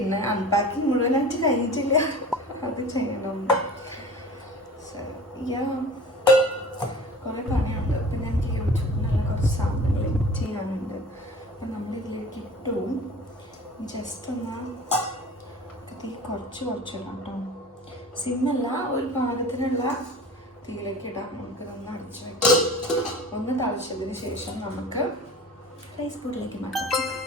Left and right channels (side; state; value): both; normal; correlation 0.40